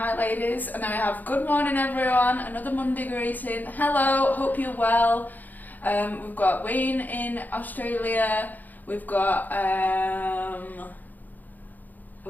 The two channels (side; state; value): right; late; 0.084 ms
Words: ladies, and then we have good morning everyone, another Monday greeting, hello, hope you're well. We've got Wayne in Australia. We had